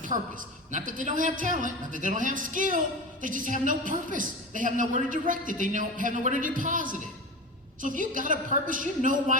purpose. Not that they don't have talent, not that they don't have skill, they just have no purpose. They have nowhere to direct it, they have nowhere to deposit it. So if you got a purpose, you know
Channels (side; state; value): both; normal; correlation 0.27